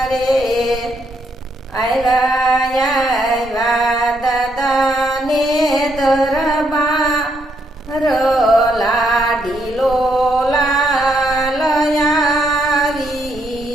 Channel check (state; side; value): normal; both; correlation 0.75